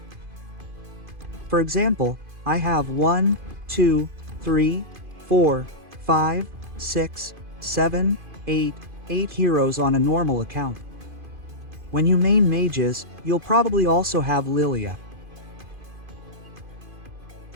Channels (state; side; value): late; left; 2.5 ms